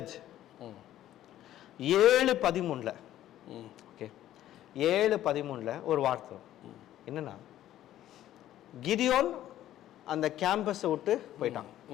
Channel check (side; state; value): right; quieter; 12.8 dB